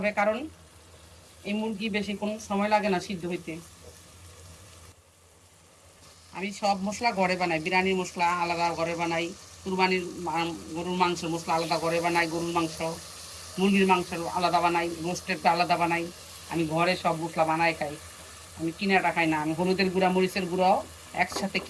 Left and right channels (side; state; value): both; identical; correlation 1.00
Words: কারণ এই মুরগি বেশি কোনো সময় লাগে না সিদ্ধ হইতে। আমি সব মশলা ঘরে বানাই, বিরিয়ানির মশলা আলাদা ঘরে বানাই, কুরবানির গরুর মাংসের মশলা আলাদা ঘরে বানাই, গরুর মাংস মুরগির মাংস আলাদা বানাই, রোস্টেরটা আলাদা বানাই। আমি ঘরে সব মশলা বানাই খাই, আমি কিনাটা খাই না। আমি হলুদের গুঁড়া মরিচের গুঁড়াও একসাথে